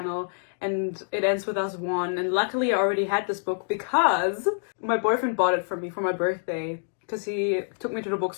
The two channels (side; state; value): right; silent; digital silence